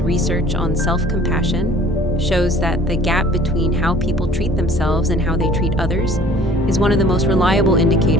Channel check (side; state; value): both; normal; correlation 0.51